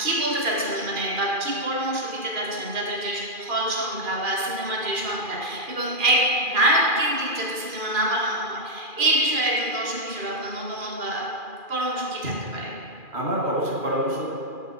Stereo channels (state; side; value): late; left; 2.4 ms